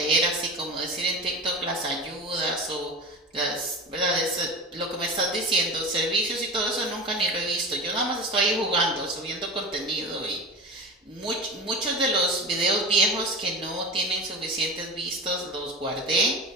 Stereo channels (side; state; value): both; normal; correlation 0.31